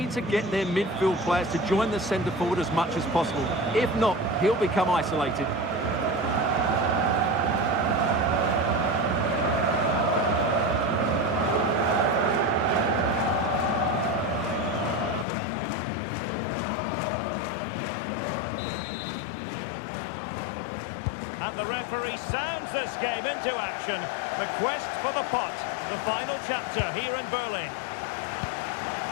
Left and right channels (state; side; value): drops out; right; at 15.2 s